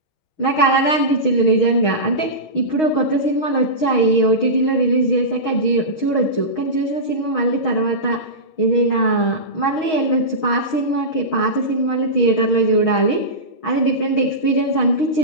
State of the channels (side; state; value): right; late; 6.4 ms